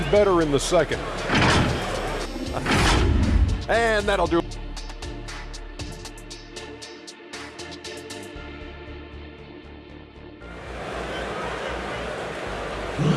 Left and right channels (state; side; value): identical; both; correlation 1.00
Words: better in the second. And that'll do it.